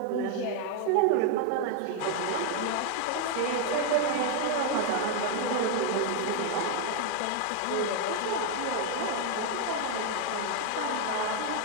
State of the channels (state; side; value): different; both; correlation 0.00